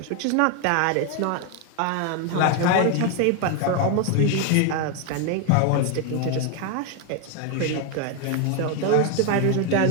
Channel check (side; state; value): both; different; correlation 0.01